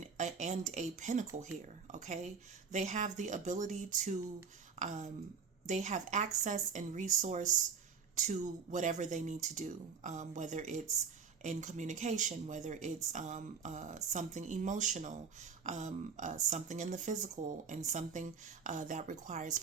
pinnacle here, okay? They have the ability to... they have access and resource to whatever they need to do, whether it's in communication, whether it's something emotional, something in the physical, and something that requires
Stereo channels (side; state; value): left; quieter; 5.9 dB